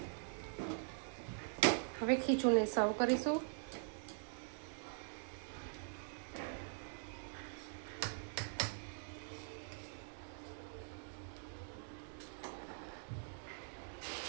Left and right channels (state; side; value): silent; left; digital silence